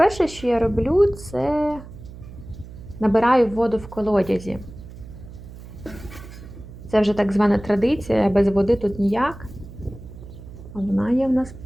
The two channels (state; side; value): noise; right; hum, 15 dB below the sound